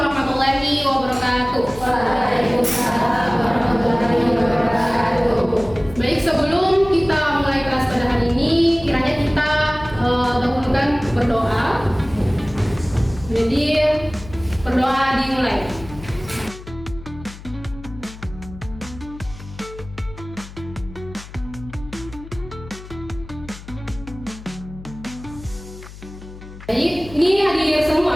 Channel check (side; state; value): left; noise; hum, 16 dB below the sound